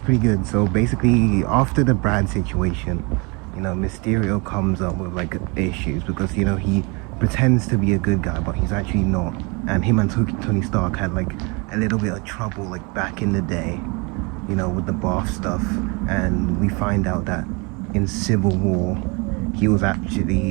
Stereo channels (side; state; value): left; quieter; 29.8 dB